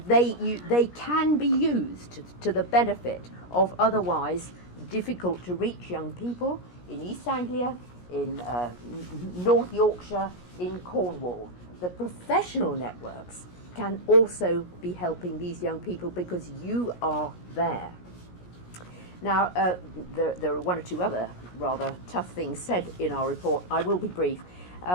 they can be used to the benefit of otherwise difficult to reach young people in East Anglia, in North Yorkshire, in Cornwall. The professional networks can also be helping these young people because you are there. Now, there are one or two other rather tough things said in our report. I will be brief.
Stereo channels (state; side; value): late; right; 17 ms